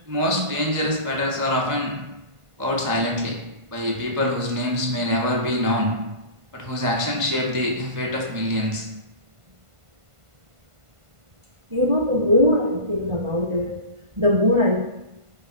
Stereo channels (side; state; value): left; late; 1.5 ms